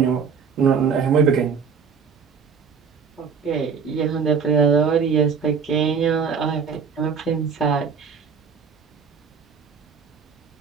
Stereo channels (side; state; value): left; quieter; 6.1 dB